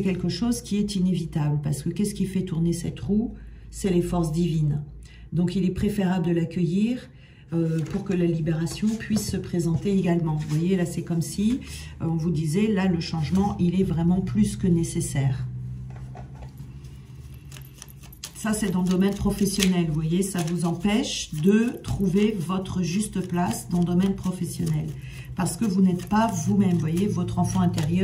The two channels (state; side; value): identical; both; correlation 1.00